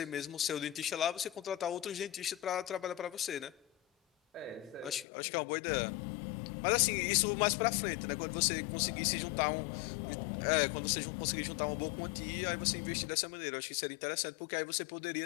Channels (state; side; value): drops out; right; at 5.1 s